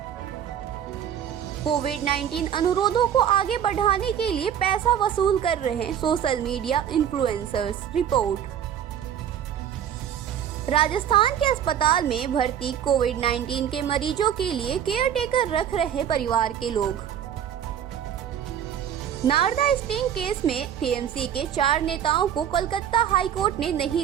कोविड-19 अनुरोधों को आगे बढ़ाने के लिए पैसा वसूल कर रहे social media influencers, report. Rajasthan के अस्पताल में भर्ती कोविड-19 के मरीजों के लिए केयर टेकर रख रहे परिवार के लोग। नारदा स्टिंग केस में टीएमसी के 4 नेताओं को कोलकाता हाईकोर्ट ने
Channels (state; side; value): quieter; left; 9.5 dB